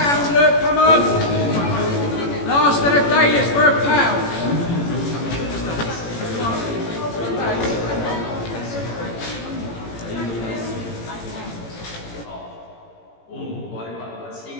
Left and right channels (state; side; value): late; right; 18 ms